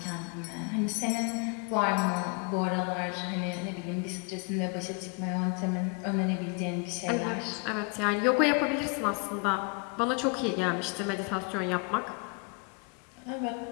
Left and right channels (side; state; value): right; quieter; 32.8 dB